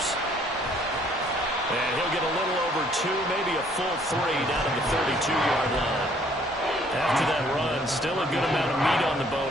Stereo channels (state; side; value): normal; both; correlation 0.62